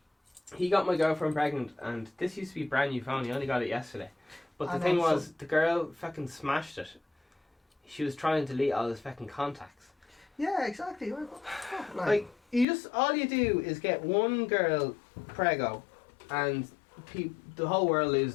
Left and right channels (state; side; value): drops out; right; at 12.7 s